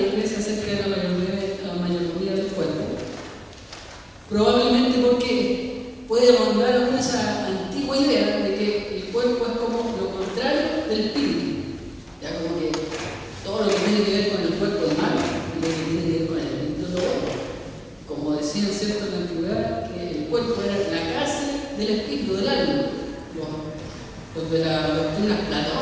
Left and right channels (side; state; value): both; identical; correlation 1.00